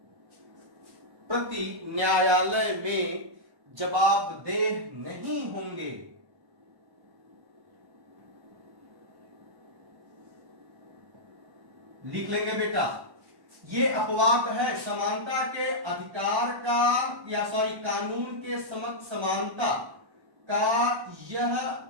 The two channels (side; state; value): left; late; 1.1 ms